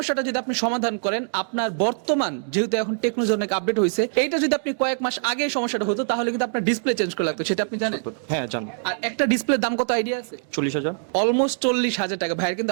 যদি আপনি সমাধান করেন, আপনার বর্তমান যেহেতু এখন টেকনোলজি অনেক আপডেট হয়েছে, এইটা যদি আপনি কয়েক মাস আগে এই সমস্যাটা হতো তাহলে কিন্তু আপনার ডিসপ্লে চেঞ্জ করে লাগতো, সেটা আপনি জানেন? হ্যাঁ জানি। আর একটা ডিসপ্লের দাম কত আইডিয়া আছে? 40,000। অলমোস্ট 40,000 টাকা। ভাইয়ের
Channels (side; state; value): left; silent; digital silence